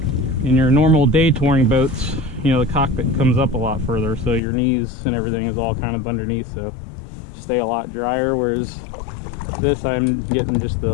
in your normal day touring boats, you know, the cockpit comes up a lot further, so your knees and everything is all kind of underneath, so stay a lot drier, whereas this I'm getting just the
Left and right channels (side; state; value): right; drops out; at 4.4 s